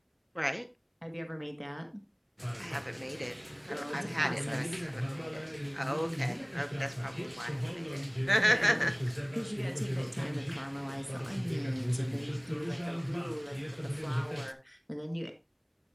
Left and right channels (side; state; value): both; identical; correlation 1.00